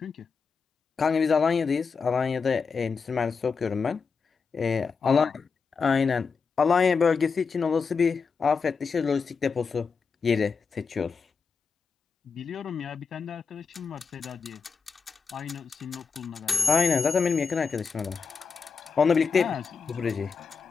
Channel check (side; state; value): right; quieter; 5.3 dB